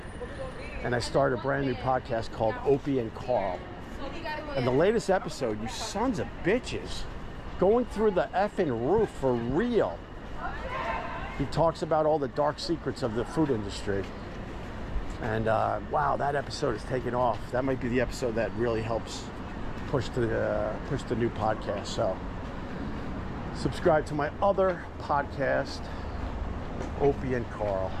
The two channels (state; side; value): identical; both; correlation 1.00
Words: And I started a brand new podcast called Opie and Carl. And the latest episode, you sons of bitches, going through the effing roof for real. He talks about all the dark secrets of the food industry. And wow, that episode is taking off. That might be the episode that really helps push the new podcast. So subscribe to my other podcast, Opie and Carl.